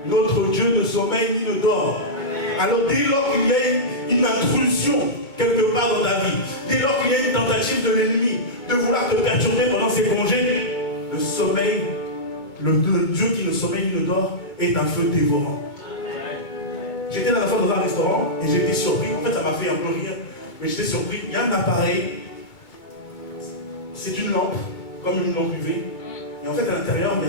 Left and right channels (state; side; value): late; right; 2.2 ms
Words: Notre Dieu ne sommeille ni ne dort. Alors dès lors qu'il y a une intrusion quelque part dans ta vie, dès lors qu'il y a une tentative de l'ennemi de vouloir te perturber pendant ses congés, le sommeil, le Dieu qui ne sommeille ni ne dort est un feu dévorant. J'étais la dernière fois dans un restaurant et j'étais surpris. En fait, ça m'a fait un peu rire, mais j'étais surpris. Il y a un appareil, c'est une lampe, comme une lampe UV. Et en fait, à l'intérieur, il